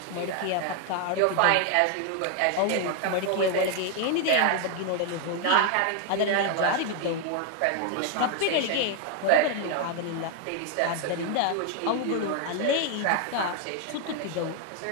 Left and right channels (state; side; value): different; both; correlation 0.00